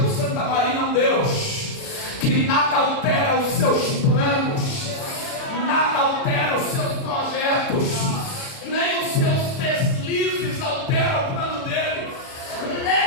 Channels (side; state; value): right; late; 37 ms